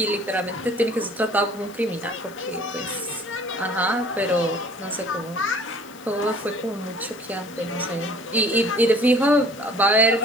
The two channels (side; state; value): left; noise; hiss, 23 dB below the sound